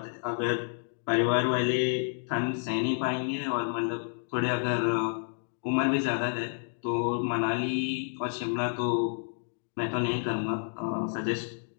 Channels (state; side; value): silent; right; digital silence